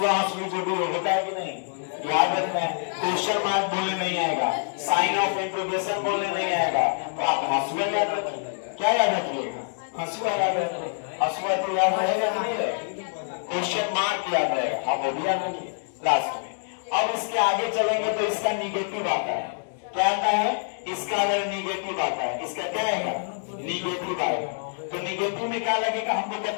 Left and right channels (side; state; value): right; silent; digital silence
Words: जो भी हो, होता है कि नहीं? याद याद रखना है, क्वेश्चन मार्क बोलने नहीं आएगा, साइन ऑफ इंट्रोगेशन बोलने नहीं आएगा, तो आप हंसुआ याद रखिए। क्या याद रखिएगा? हंसुआ याद रखिए। हंसुआ तो याद रहेगा कि नहीं रहेगा? क्वेश्चन मार्क याद रहेगा, आप वो भी याद रखिए लास्ट में। अब इसके आगे चलेंगे तो इसका निगेटिव आता है। क्या आता है? इसका अगर निगेटिव आता है, इसका क्या आएगा? निगेटिव आएगा। तो निगेटिव में क्या लगेगा? हमको